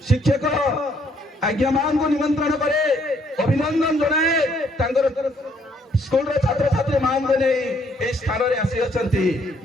शिक्षक आज्ञा मान को निमंत्रण करे ଅଭିନନ୍ଦନ ଜଣାଏ ତାଙ୍କର ସ୍କୁଲର ଛାତ୍ରଛାତ୍ରୀ ମାନଙ୍କୁ ନେଇ ଏହି ସ୍ଥାନରେ ଆସି ଅଛନ୍ତି।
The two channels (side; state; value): both; normal; correlation 0.68